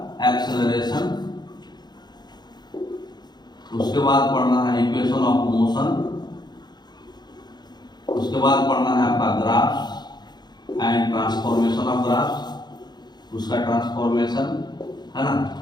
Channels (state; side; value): late; right; 0.21 ms